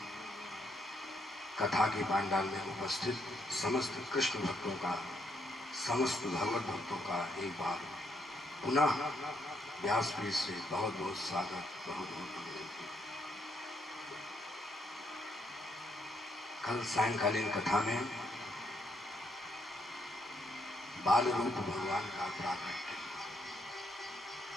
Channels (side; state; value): both; normal; correlation 0.75